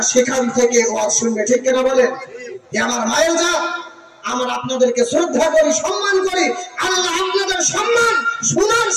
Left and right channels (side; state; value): both; identical; correlation 1.00